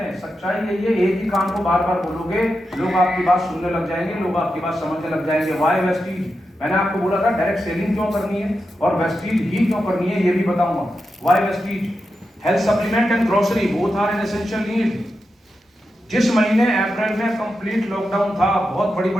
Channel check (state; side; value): normal; both; correlation 0.89